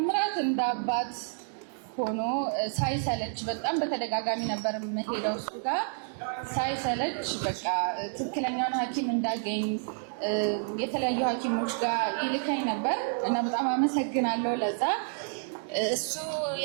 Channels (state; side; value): silent; left; digital silence